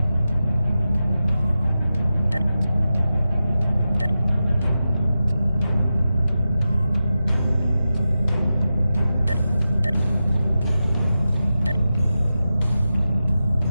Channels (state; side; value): inverted; both; correlation -0.91